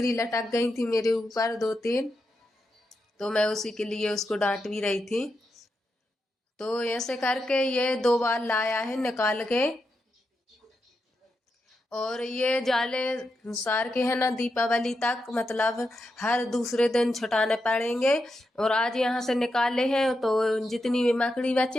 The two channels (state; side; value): normal; both; correlation 0.86